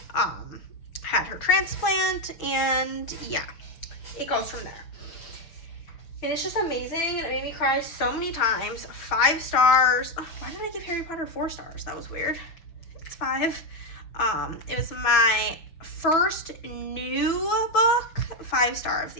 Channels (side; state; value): right; late; 6.0 ms